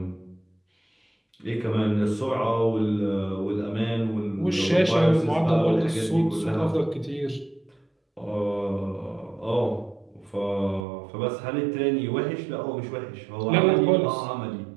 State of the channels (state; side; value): drops out; left; at 10.9 s